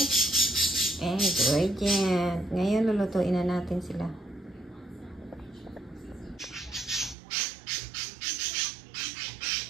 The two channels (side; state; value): left; drops out; at 7.2 s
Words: ingredient. Ngayon, lulutuin na natin sila.